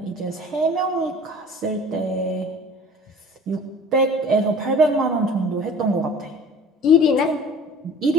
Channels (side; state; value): both; normal; correlation 0.45